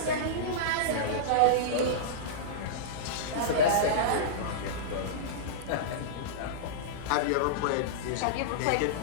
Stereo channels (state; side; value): different; both; correlation -0.04